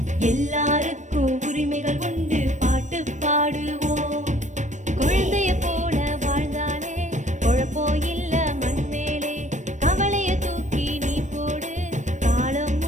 எல்லாருக்கும் உரிமைகள் உண்டு, பாட்டு பாடுவோம். குழந்தைய போல வாழ்ந்தாலே குழப்பம் இல்ல மண் மேலே. கவலைய தூக்கி நீ போடு, காலம்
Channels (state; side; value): late; left; 0.35 ms